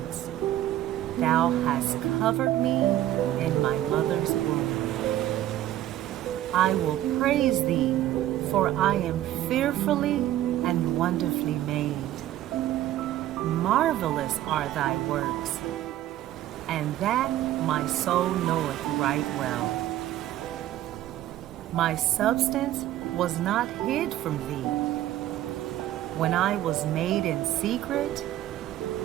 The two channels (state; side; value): quieter; left; 13.4 dB